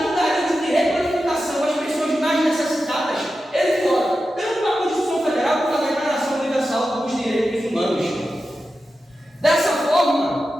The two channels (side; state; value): both; normal; correlation 0.91